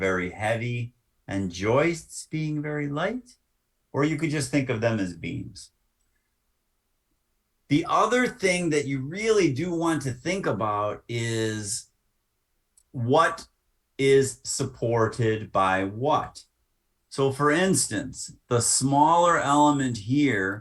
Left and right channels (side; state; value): both; identical; correlation 1.00